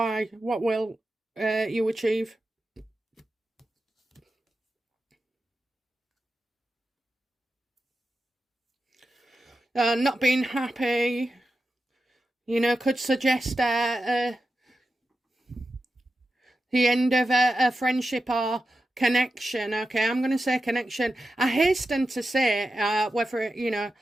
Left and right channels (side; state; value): both; normal; correlation 0.91